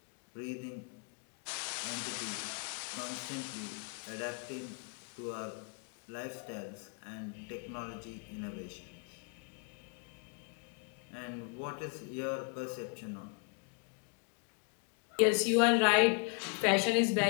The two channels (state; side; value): quieter; right; 37.0 dB